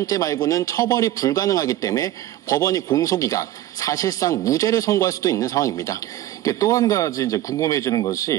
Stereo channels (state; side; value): quieter; left; 13.8 dB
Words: 말고는 처벌이 불가능하기 때문에 법원이 공소기각, 사실상 무죄를 선고할 수도 있는 상황입니다. 또 한 가지 이제 궁금해지는